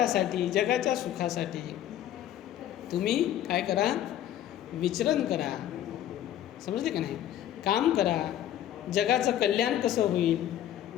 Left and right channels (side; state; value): right; quieter; 11.7 dB